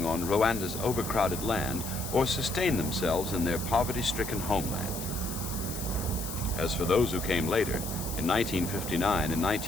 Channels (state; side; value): noise; left; hiss, 8 dB below the sound